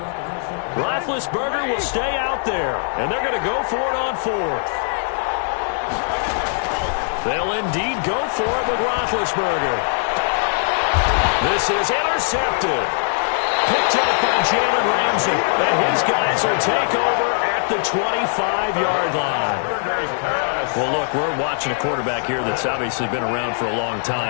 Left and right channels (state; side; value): silent; right; digital silence